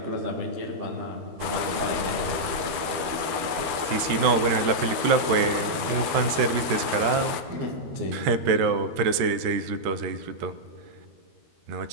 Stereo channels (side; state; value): left; late; 13 ms